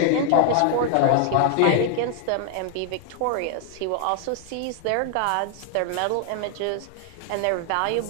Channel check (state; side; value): different; both; correlation 0.00